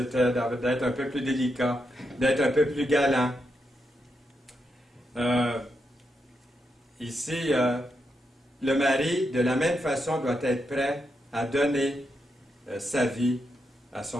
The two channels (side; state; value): both; normal; correlation 0.83